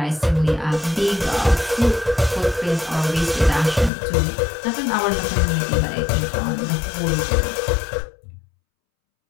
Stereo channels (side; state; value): right; drops out; at 3.9 s